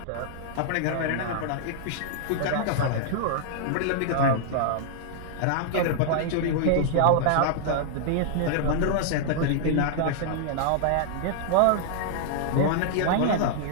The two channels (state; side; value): different; both; correlation -0.01